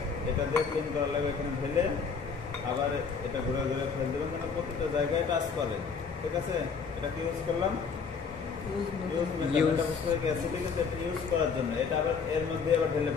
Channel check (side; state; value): right; quieter; 5.6 dB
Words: এটা দিয়ে ক্লিন করা লাগবে। এখানে ঢেলে আবার এটা ঘুরে ঘুরে ফেলে দেবেন, মানে প্রতিটা জায়গায় টাচ করে, ঠিক আছে? এটা কি ইউজ করলাম? ইউজ করার জন্য। এটা আবার এর মধ্যে আবার ঢেলে